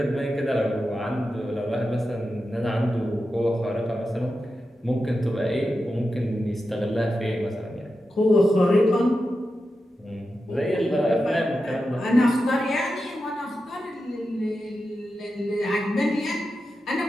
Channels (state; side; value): normal; both; correlation 0.90